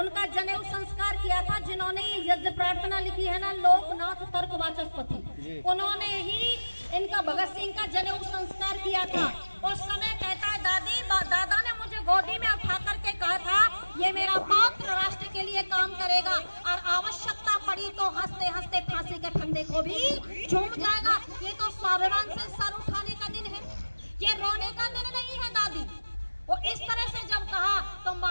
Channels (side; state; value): both; inverted; correlation -1.00